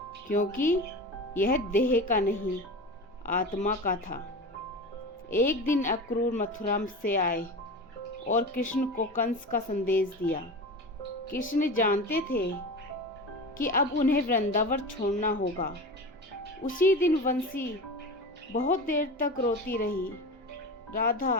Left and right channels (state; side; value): normal; both; correlation 0.29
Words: क्योंकि यह देह का नहीं, आत्मा का था। एक दिन अक्रूर मथुरा से आए और कृष्ण को कंस का संदेश दिया। कृष्ण जानते थे कि अब उन्हें वृंदावन छोड़ना होगा। उसी दिन बंसी बहुत देर तक रोती रही। राधा